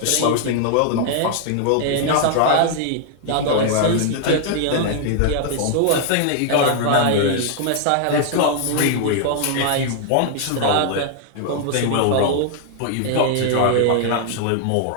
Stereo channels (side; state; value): both; different; correlation 0.00